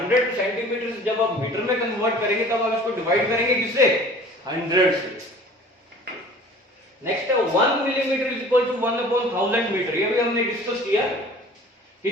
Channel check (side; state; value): both; normal; correlation 0.46